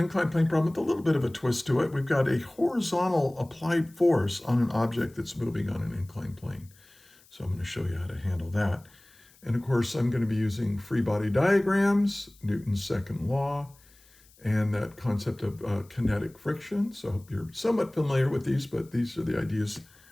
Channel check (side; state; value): left; noise; hiss, 28 dB below the sound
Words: plane problem with a little bit of a twist to it. We've got a horizontal applied force on an object that's moving on an inclined plane. So I'm going to show you how to handle that. And of course, I'm going to be using free body diagrams, Newton's second law, and that concept of kinetic friction. So I hope you're somewhat familiar with these, but these are the ideas